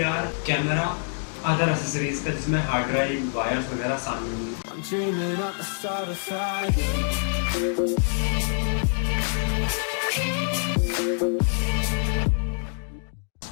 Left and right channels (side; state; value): right; silent; 61 dB below the other